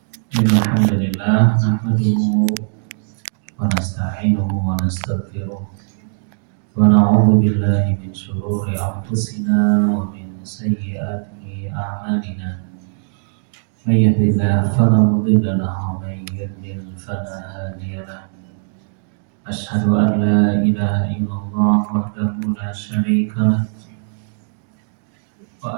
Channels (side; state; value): left; silent; digital silence